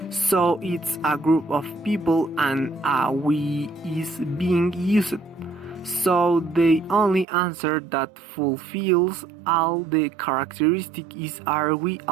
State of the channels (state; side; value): drops out; left; at 7.2 s